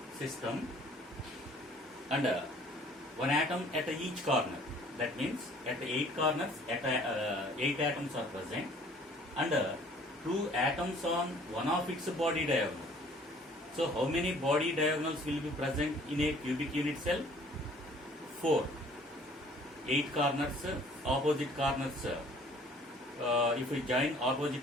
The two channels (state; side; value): normal; both; correlation 0.55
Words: system and one atom at each corner. That means at 8 corners, 8 atoms are present and 2 atoms on one of its body diagonal. So how many body diagonals will be present in a cubic unit cell? 4. 8 corners, opposite corners. If we join